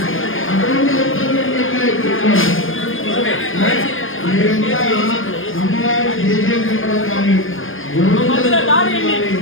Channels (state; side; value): late; right; 0.59 ms